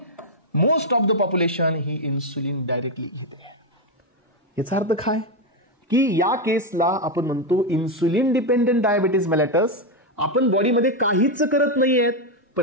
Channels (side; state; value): both; normal; correlation 0.04